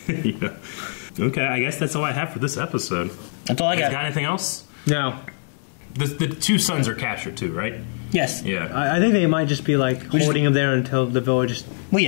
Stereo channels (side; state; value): right; silent; 64 dB below the other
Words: Okay, I guess that's all I have for this episode. That's all I got. Got anything else? No. The two sons are captured too, right? Yes. Yeah. I think they might just be like holding him there until the village. Well,